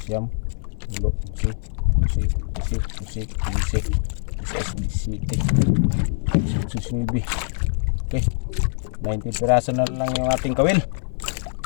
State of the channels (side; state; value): right; silent; digital silence